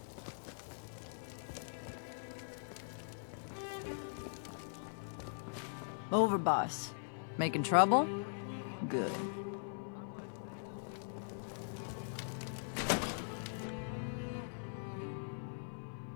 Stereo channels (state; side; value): silent; right; 50 dB below the other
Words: Overboss. Making trouble? Good.